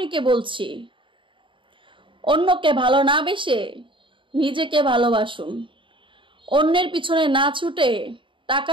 কে বলছি? অন্যকে ভালো না বেসে নিজেকে ভালোবাসুন। অন্যের পিছনে না ছুটে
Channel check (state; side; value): late; left; 0.24 ms